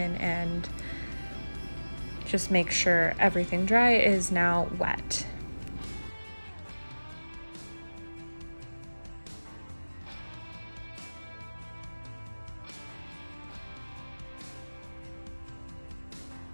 and just make sure everything dry is now wet.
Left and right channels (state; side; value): inverted; both; correlation -1.00